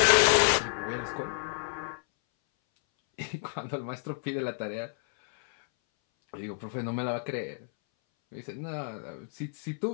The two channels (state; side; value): silent; right; 58 dB below the other